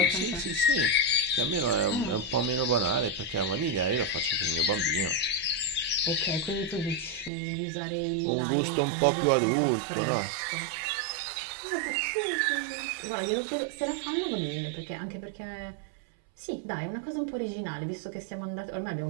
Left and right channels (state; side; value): drops out; left; at 7.3 s